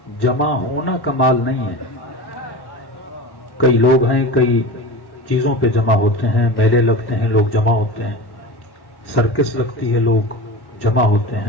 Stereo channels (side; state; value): right; late; 1.1 ms